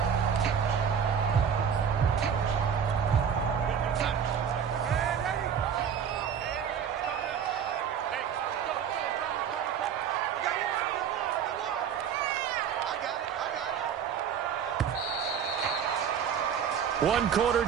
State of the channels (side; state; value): left; quieter; 7.8 dB